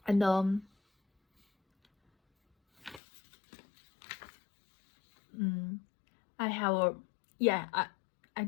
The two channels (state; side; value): drops out; right; at 3.0 s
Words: And I have I